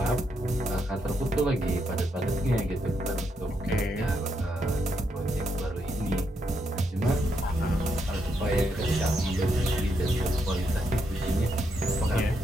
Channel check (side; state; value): both; normal; correlation 0.79